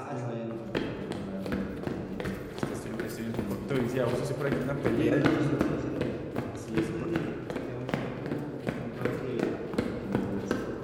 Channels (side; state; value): both; identical; correlation 1.00